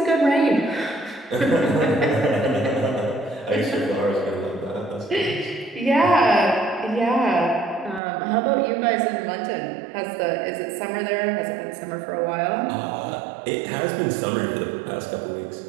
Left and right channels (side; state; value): left; drops out; at 8.0 s